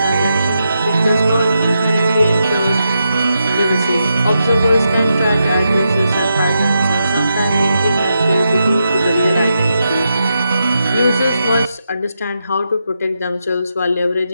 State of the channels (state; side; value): inverted; both; correlation -0.85